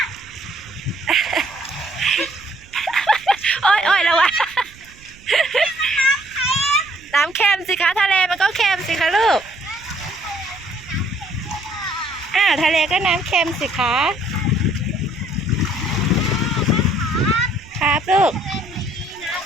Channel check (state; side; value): noise; right; rumble, 24 dB below the sound